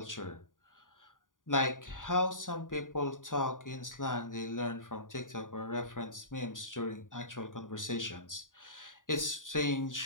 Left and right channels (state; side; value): late; right; 0.89 ms